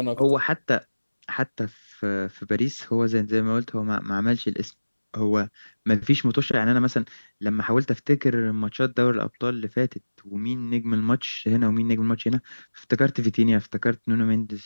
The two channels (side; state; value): both; inverted; correlation -1.00